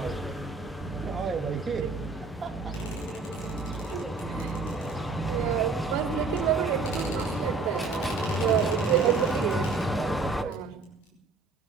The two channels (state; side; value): quieter; left; 4.2 dB